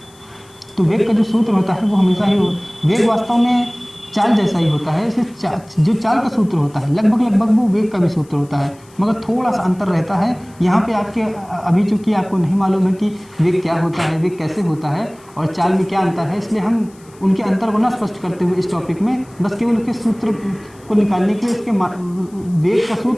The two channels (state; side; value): noise; left; hiss, 28 dB below the sound